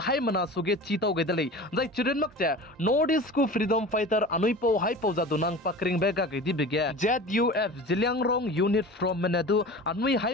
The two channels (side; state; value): both; normal; correlation 0.36